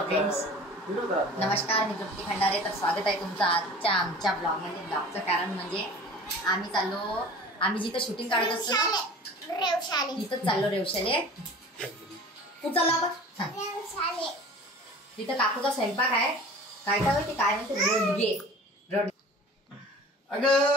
नमस्कार, मी तृप्ती खंडारे. तर स्वागत आहे तुमचं आजच्या आमच्या ब्लॉगमध्ये. ब्लॉगचं कारण म्हणजे आम्ही जिथं शूटिंग काढत असतो ना तिथंच चाललो रेवशाले. कुठं चाललो आपण? तिथं काकूचा स्वयंपाक आहे. काय होती काय म्हणते रोडगे.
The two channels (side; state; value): both; normal; correlation 0.42